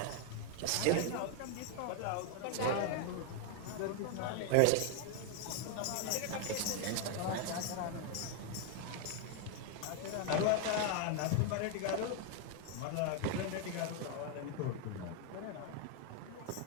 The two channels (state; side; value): different; both; correlation 0.01